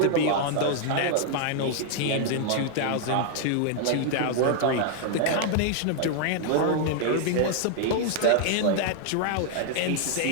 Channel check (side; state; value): both; different; correlation 0.00